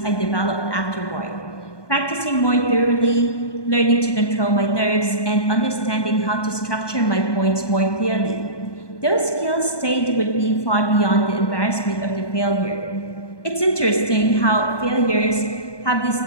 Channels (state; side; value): late; right; 1.2 ms